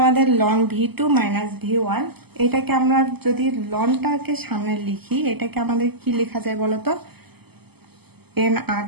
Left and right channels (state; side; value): late; left; 0.97 ms